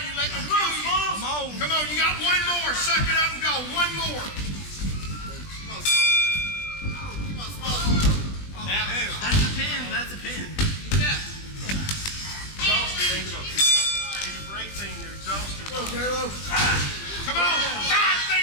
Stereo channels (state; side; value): late; right; 20 ms